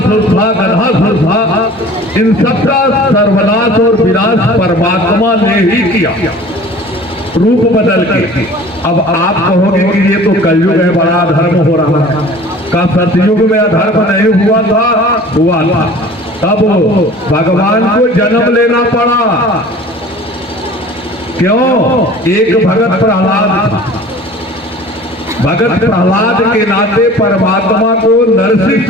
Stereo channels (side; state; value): both; normal; correlation 0.45